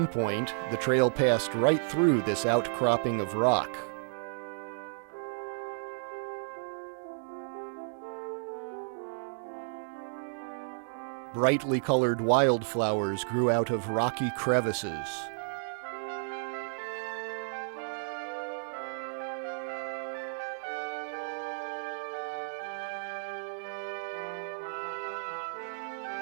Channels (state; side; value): silent; left; digital silence